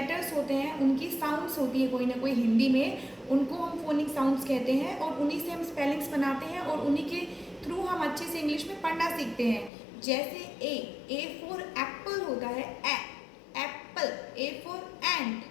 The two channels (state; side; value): drops out; right; at 9.7 s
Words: होते हैं उनकी साउंड्स होती है कोई ना कोई हिंदी में, उनको हम फोनिक साउंड्स कहते हैं और उन्हीं से हम स्पेलिंग्स बनाते हैं और उन्हीं के थ्रू हम अच्छे से इंग्लिश में पढ़ना सीखते हैं। जैसे ए फॉर एप्पल होता है, एप्पल। ए फॉर एंट,